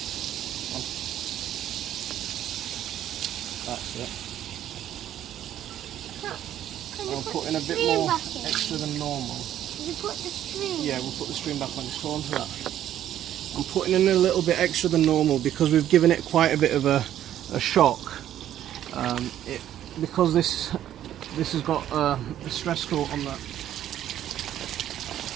That's it. Can you I'll put put in a bit stream more back in? extra than normal. Did you put the stream? Yeah, we'll put the stream back on. Just hold on to that. I'm putting in a little bit extra than normal because we've given it quite a bit of a shock. Because this has got a stress coat on that.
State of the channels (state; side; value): quieter; left; 11.5 dB